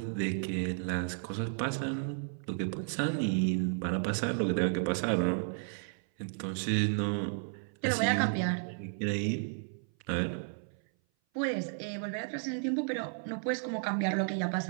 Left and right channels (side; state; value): left; silent; 56 dB below the other